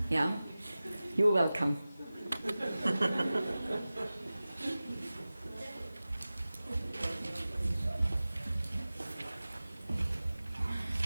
Yeah, you're welcome.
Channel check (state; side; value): inverted; both; correlation -0.97